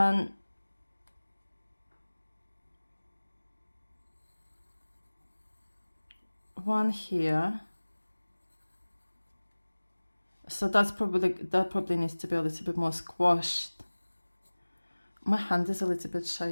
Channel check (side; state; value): both; inverted; correlation -1.00